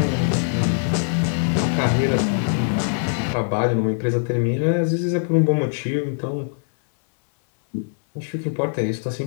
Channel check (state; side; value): silent; right; 64 dB below the other